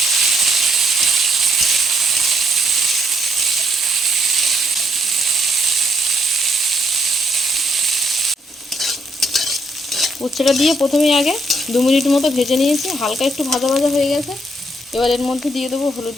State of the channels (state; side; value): normal; both; correlation 0.73